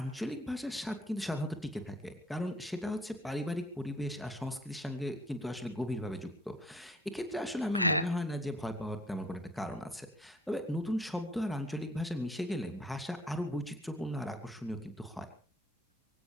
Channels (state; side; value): normal; both; correlation 0.54